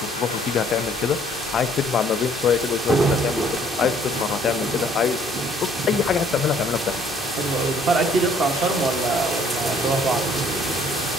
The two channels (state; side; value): normal; both; correlation 0.61